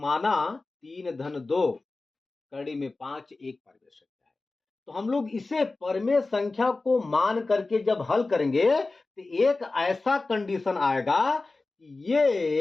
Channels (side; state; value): right; quieter; 3.5 dB